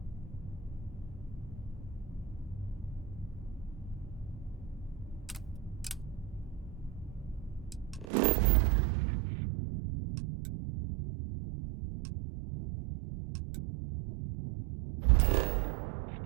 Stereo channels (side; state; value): left; drops out; at 8.1 s